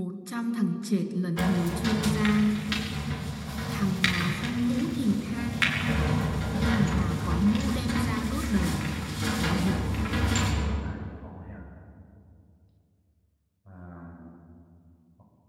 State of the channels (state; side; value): identical; both; correlation 1.00